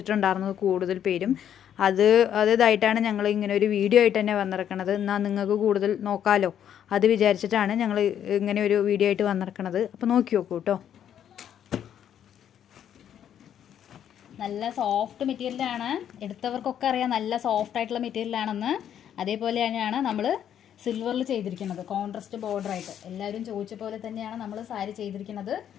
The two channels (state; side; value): quieter; right; 9.7 dB